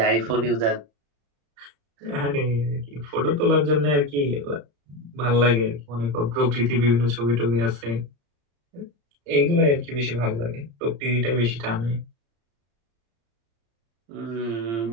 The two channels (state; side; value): late; left; 35 ms